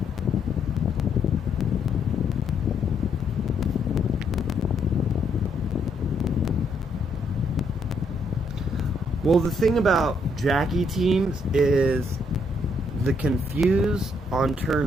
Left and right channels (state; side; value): normal; both; correlation 0.73